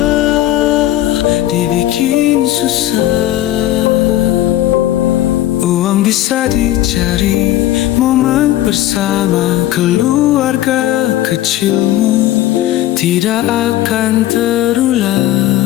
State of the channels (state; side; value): quieter; right; 14.0 dB